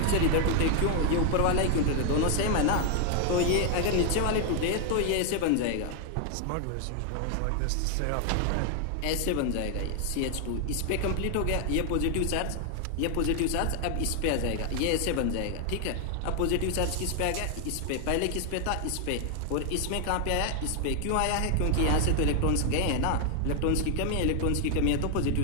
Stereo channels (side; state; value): both; different; correlation 0.00